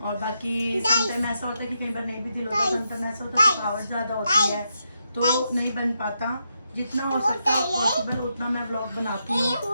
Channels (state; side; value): inverted; both; correlation -0.83